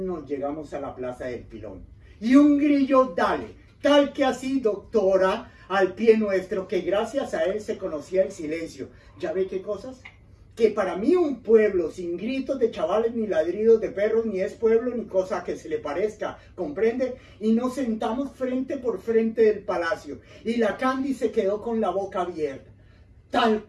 llegamos a la plaza del Pilón. Y un grillo dale, tal que así, doctora, al pie nuestro, que gracias a él se conocía el silencio. ¿Ya ve qué cosas? Que para mí un pueblo sin gritos de chavales ni ladridos de perros ni es pueblo ni cosa que se le parezca, ¿comprende? Y nos sentamos frente por frente del palacio y la Candy se quedó con la boca abierta, tal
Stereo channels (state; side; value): identical; both; correlation 1.00